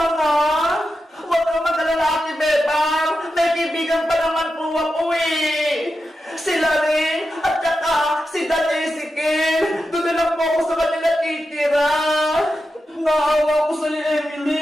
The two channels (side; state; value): both; normal; correlation 0.89